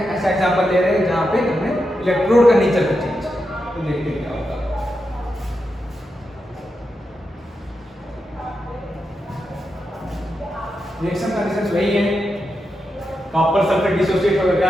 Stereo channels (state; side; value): normal; both; correlation 0.87